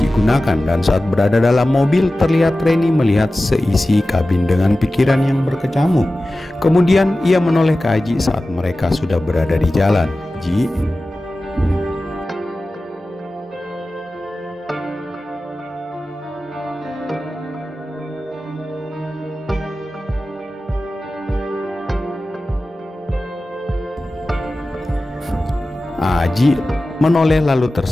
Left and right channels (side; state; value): both; normal; correlation 0.95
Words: gunakan, dan saat berada dalam mobil terlihat Reni melihat seisi kabin dengan pikiran yang berkecamuk. Kemudian ia menoleh ke Aji saat mereka sudah berada di jalan. Ji, Aji menoleh lalu